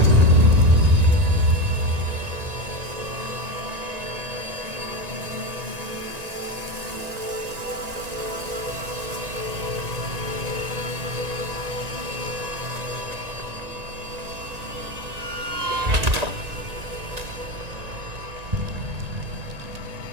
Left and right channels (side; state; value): left; late; 1.9 ms